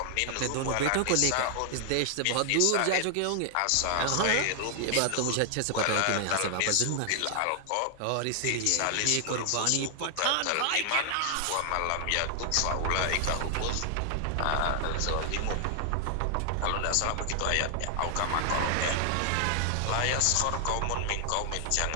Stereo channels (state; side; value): different; both; correlation 0.00